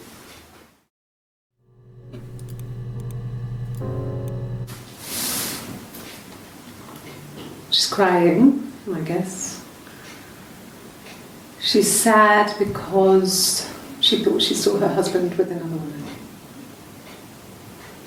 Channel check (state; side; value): identical; both; correlation 1.00